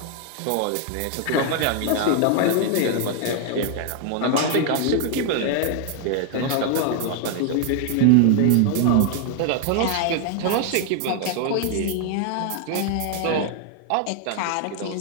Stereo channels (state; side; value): different; both; correlation 0.00